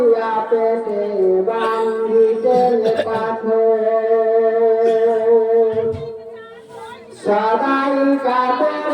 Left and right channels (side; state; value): both; identical; correlation 1.00